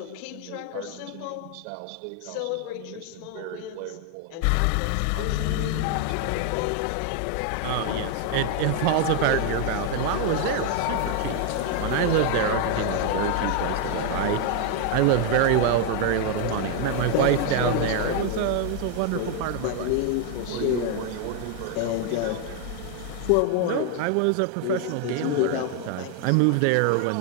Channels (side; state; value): both; different; correlation 0.00